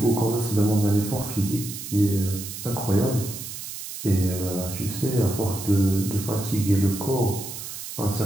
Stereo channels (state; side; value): noise; right; hiss, 9 dB below the sound